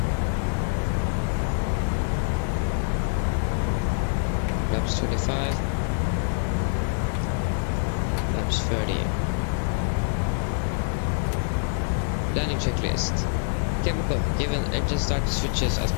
Laps 25. Landing checklist. Chemical, given engine start switches as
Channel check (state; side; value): silent; right; digital silence